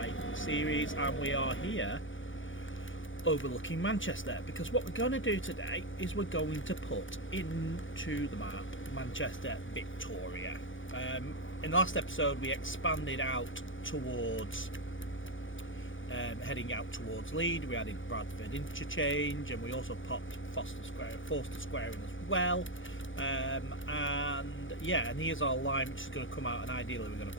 series, and we are here overlooking Manchester because what we're going to do today is we're going to put into the map Manchester Victoria. In the last episode we expanded out towards heading out towards Leeds. We added Bradford interchange, and we also popped Forster Square in as well. And here's our line which is going to come out, and ideally we're going to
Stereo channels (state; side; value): late; right; 0.56 ms